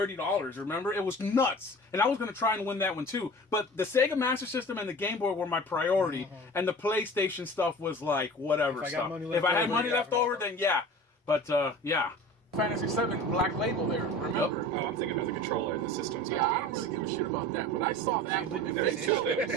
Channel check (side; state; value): both; normal; correlation 0.39